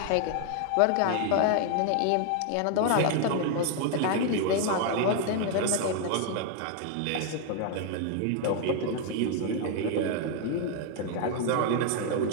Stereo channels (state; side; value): different; both; correlation 0.00